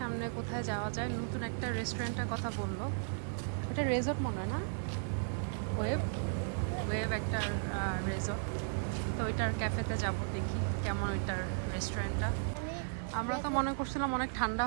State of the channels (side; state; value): left; silent; digital silence